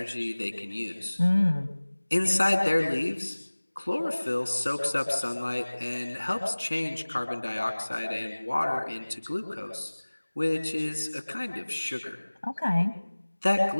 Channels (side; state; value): both; inverted; correlation -1.00